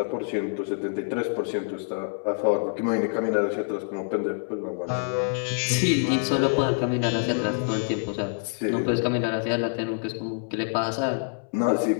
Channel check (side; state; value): right; silent; 61 dB below the other